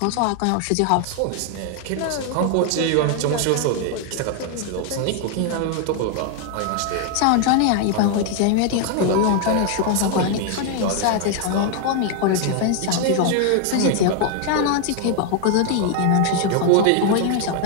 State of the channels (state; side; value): different; both; correlation 0.00